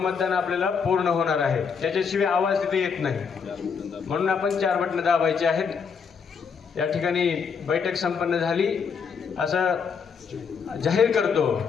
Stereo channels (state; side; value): quieter; right; 6.1 dB